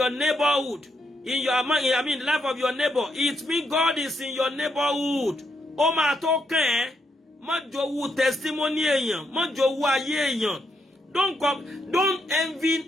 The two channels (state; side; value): normal; both; correlation 0.78